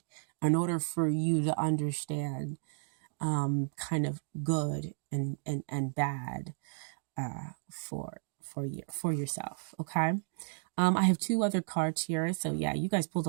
in order for you to understand kind of good and bad for yourself. Okay. I have 2 other cards here. So yeah, you guys pulled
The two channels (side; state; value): left; silent; digital silence